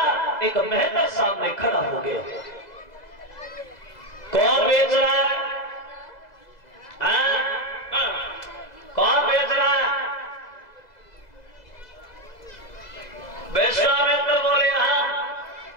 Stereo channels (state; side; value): late; right; 2.0 ms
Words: एक मेहतर सामने खड़ा हो गया। कौन बेच रहा है? कौन बेच रहा है? विश्वामित्र बोले